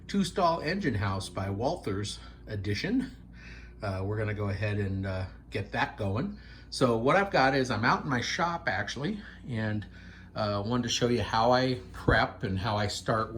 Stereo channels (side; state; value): both; identical; correlation 1.00